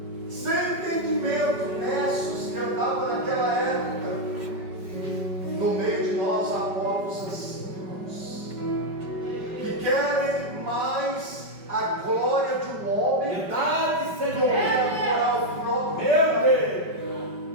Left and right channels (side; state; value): left; late; 5.2 ms